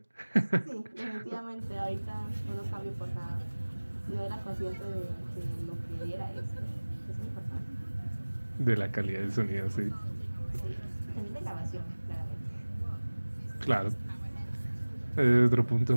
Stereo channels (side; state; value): both; inverted; correlation -1.00